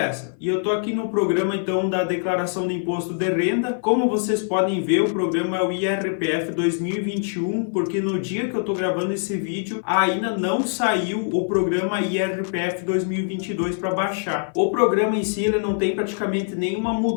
E eu estou aqui no programa então da declaração de imposto de renda. Como vocês podem ver, o programa é o IRPF 2021, porque no dia que eu estou gravando esse vídeo ainda não saiu o programa IRPF 2022 para baixar. O programa em si ele não tem praticamente nenhuma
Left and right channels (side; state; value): right; silent; 56 dB below the other